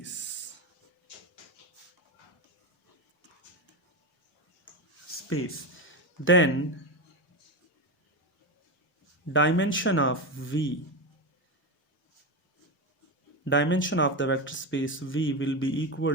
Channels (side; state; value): both; normal; correlation 0.15